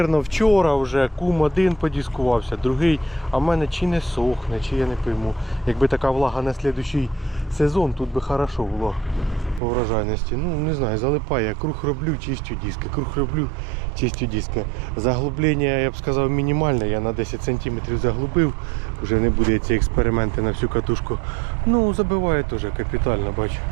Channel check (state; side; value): drops out; left; at 9.6 s